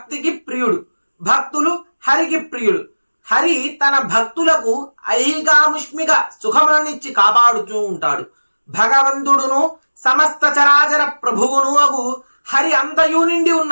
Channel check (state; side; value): inverted; both; correlation -1.00